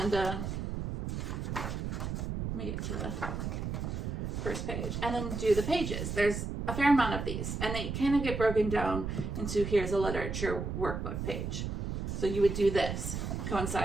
let me get to the first page, and then do the pages. There's a fair amount of these, and they kind of get broken down into here's a literature workbook page. So you would do this,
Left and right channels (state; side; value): noise; right; rumble, 3 dB below the sound